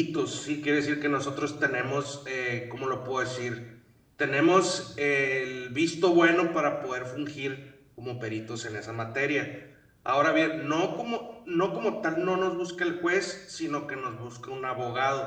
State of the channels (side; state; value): both; identical; correlation 1.00